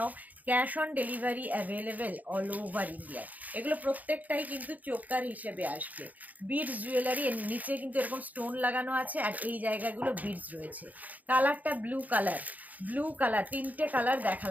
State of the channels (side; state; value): left; late; 0.079 ms